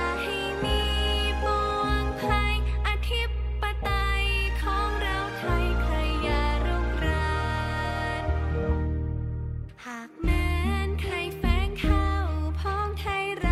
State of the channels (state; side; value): identical; both; correlation 1.00